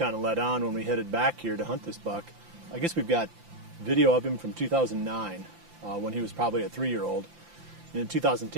of let on when we headed back here to hunt this buck. I guess we've got video of him from 2009 when he was probably a 3-year-old. And in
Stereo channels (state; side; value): late; left; 5.8 ms